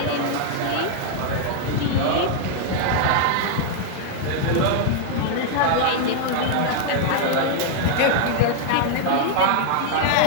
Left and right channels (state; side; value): different; both; correlation 0.00